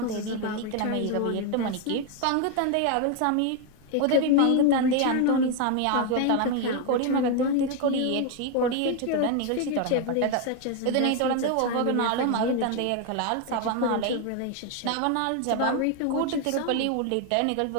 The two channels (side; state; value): both; different; correlation 0.01